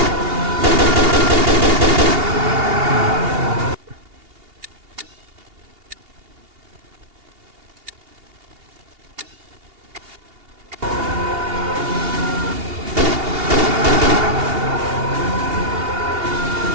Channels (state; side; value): late; left; 2.8 ms